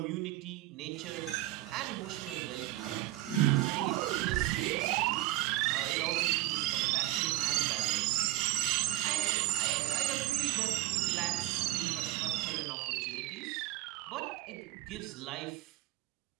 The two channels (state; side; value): quieter; left; 17.1 dB